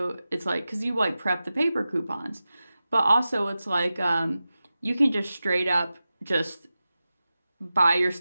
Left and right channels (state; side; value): inverted; both; correlation -0.94